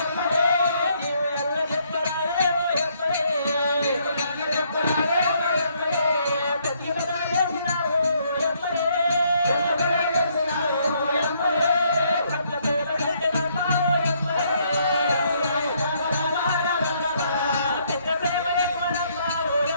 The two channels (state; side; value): inverted; both; correlation -0.70